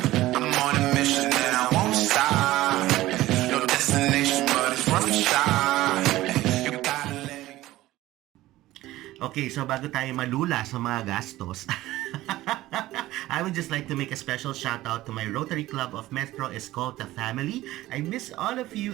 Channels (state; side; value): quieter; left; 16.4 dB